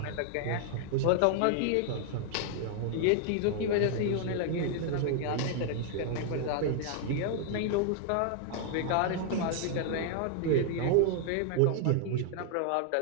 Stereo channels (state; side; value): different; both; correlation 0.00